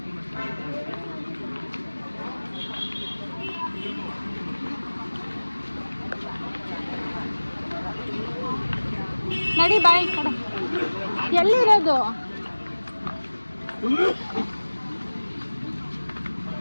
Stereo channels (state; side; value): inverted; both; correlation -1.00